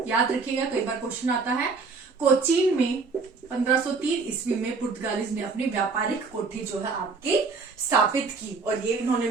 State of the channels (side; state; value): left; quieter; 4.5 dB